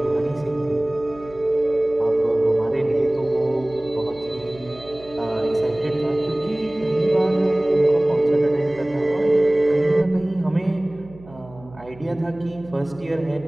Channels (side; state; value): right; noise; hum, 21 dB below the sound